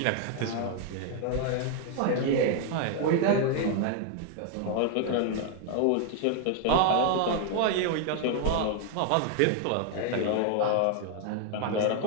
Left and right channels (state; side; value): different; both; correlation 0.00